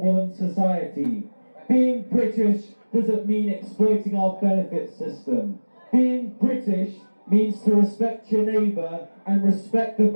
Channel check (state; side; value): inverted; both; correlation -1.00